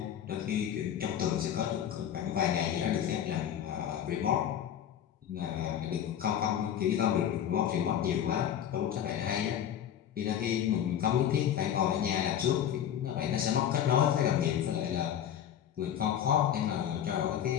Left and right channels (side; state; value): right; quieter; 9.9 dB